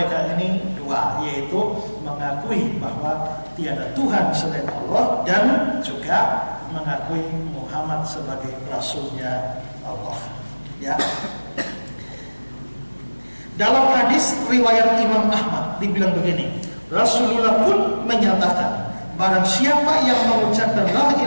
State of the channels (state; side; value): inverted; both; correlation -1.00